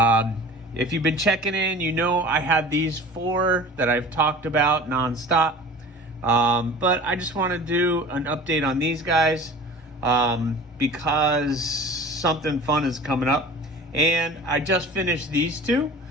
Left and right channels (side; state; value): both; normal; correlation 0.40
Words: you've been checking in, you know I had these 4 that I've talked about nonstop. But I just want to do an update on these guys because something fun is coming up. And I just finished these 2.